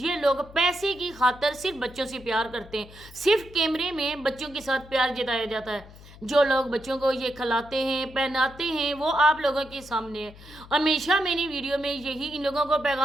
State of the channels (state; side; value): noise; left; hum, 20 dB below the sound